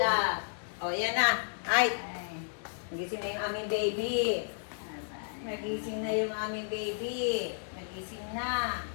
O, yan na. Ay, nagising na yung aming baby. Nagising na yung aming baby. Nagising na.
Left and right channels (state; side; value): silent; right; digital silence